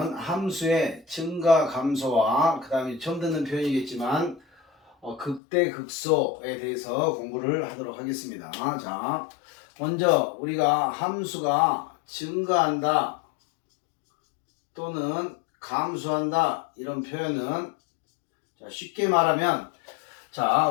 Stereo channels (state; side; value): drops out; right; at 5.4 s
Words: 함수의 증가 감소와 그 다음에 처음 듣는 표현이겠지만 극대 극소에 대해서 공부를 하도록 하겠습니다. 자, 먼저 우리가 함수가 증가한다 또는 감소한다 이런 표현은 자, 쉽게 말하면 자,